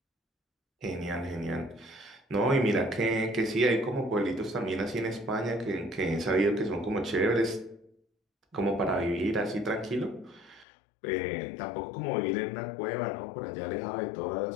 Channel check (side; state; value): right; drops out; at 10.7 s